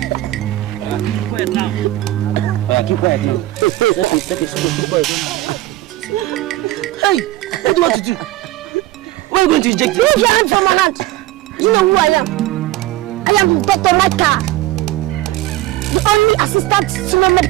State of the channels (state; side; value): quieter; left; 16.6 dB